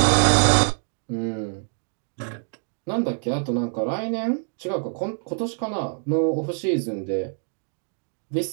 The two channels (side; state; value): left; silent; 62 dB below the other